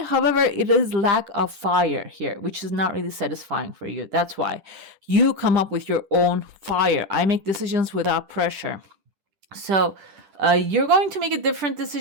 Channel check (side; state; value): left; late; 10 ms